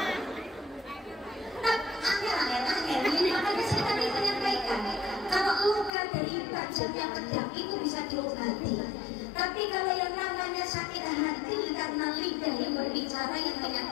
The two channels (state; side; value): drops out; right; at 5.9 s